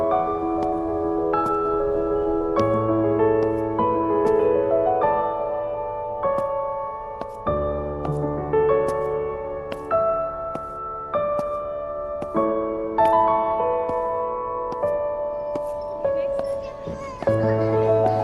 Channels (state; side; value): identical; both; correlation 1.00